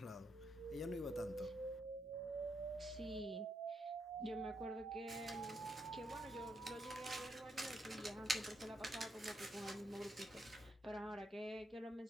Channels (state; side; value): normal; both; correlation 0.79